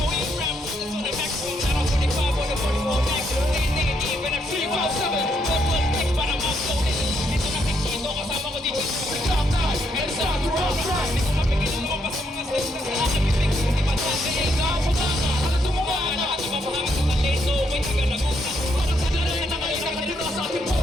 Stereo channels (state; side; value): normal; both; correlation 0.76